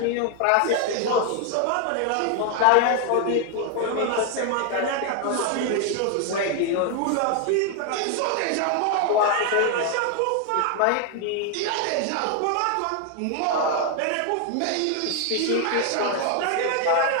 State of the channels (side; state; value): both; different; correlation 0.01